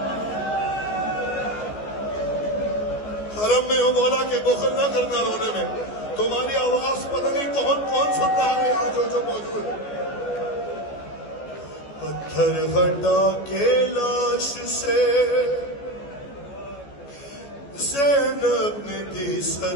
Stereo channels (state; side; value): late; right; 14 ms